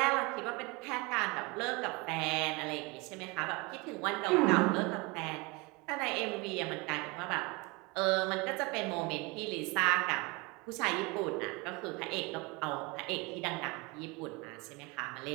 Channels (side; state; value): left; quieter; 26.4 dB